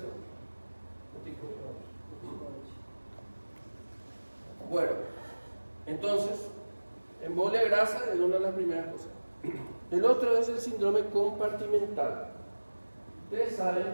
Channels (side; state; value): both; inverted; correlation -1.00